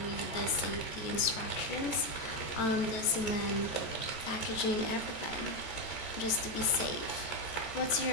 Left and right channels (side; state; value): right; late; 14 ms